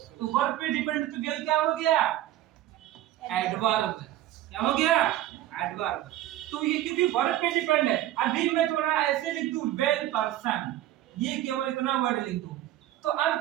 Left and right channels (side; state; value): left; quieter; 13.8 dB